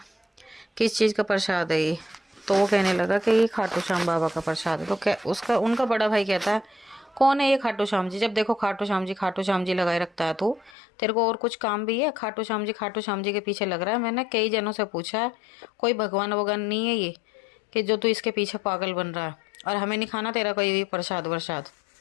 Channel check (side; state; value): right; drops out; at 10.8 s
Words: किस चीज़ का प्रसाद है ये? तो वो कहने लगा कि ये खाटू श्याम बाबा का प्रसाद है। तो क्या उनका बड़ा भाई कहता है, कौन है ये खाटू श्याम जी? जब देखो खाटू श्याम जी लगाए रखता है तू। तेरे को और कुछ काम भी है? खाटू श्याम जी के पीछे लग रहा है। मैंने कई जनों से पूछा है, कोई भगवान वगवान नहीं है ये कि जो तू इसके पीछे पागल बन रहा है, और हमें नहीं खाना तेरा कोई भी प्रसाद वरसाद।